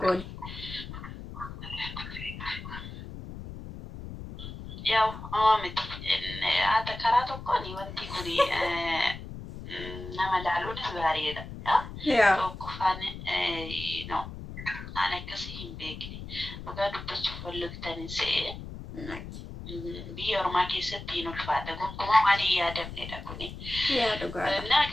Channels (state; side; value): noise; left; rumble, 11 dB below the sound